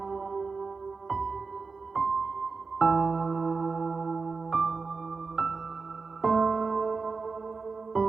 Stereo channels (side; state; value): left; quieter; 4.5 dB